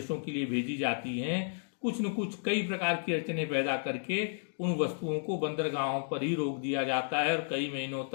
के लिए भेजी जाती हैं, कुछ न कुछ कई प्रकार की अड़चनें पैदा करके उन वस्तुओं को बंदरगाहों पर ही रोक दिया जाता है और कई महीनों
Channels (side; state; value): right; silent; digital silence